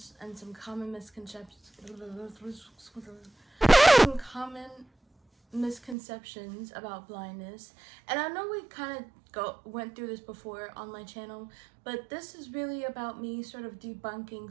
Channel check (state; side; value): drops out; left; at 6.0 s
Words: and some common misconceptions. Some common misconceptions about blindness, and I know we kind of went through this before on my channel, but this is really about me sort of